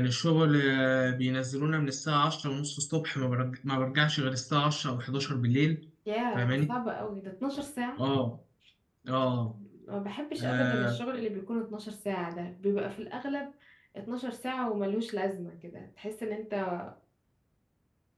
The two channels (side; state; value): both; identical; correlation 1.00